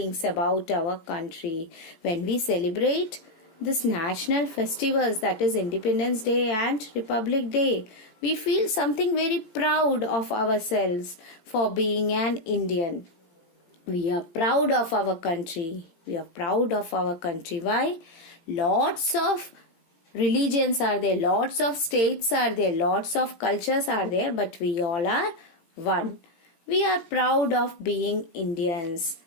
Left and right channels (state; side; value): late; right; 18 ms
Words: about our country. When we celebrate this national festivals, that is Independence Day and Republic Day, we feel something very proud of ourselves for being an Indian. We are proud of our country. We are proud of our country. Why? Lots of religions are there, lots of states are there, lots of cultures are there, but we all are one. We are proud of being Indians.